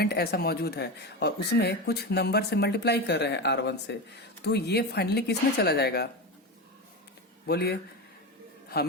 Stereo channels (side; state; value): both; normal; correlation 0.20